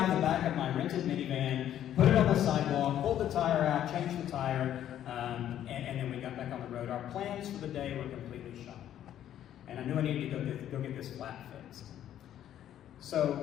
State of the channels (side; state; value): right; quieter; 11.1 dB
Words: of the back of my rented minivan, put it on the sidewalk, pulled the tire out, changed the tire, and then we got back on the road. Our plans for the day were completely shot. And I knew I needed to go get this flat fixed.